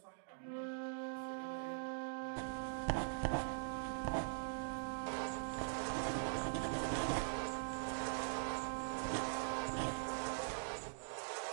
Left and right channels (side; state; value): left; silent; digital silence